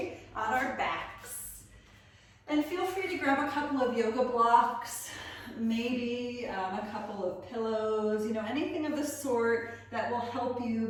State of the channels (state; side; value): identical; both; correlation 1.00